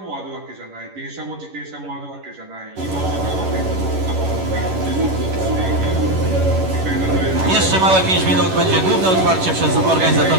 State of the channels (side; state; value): left; late; 11 ms